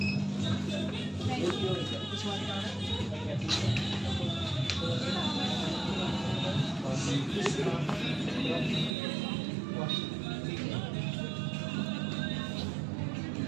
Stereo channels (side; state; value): left; drops out; at 9.0 s